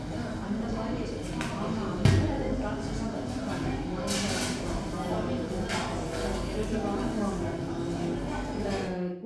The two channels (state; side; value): identical; both; correlation 1.00